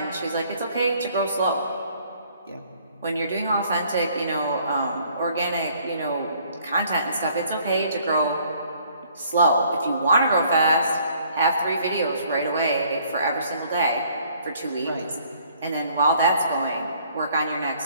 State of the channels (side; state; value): both; inverted; correlation -0.61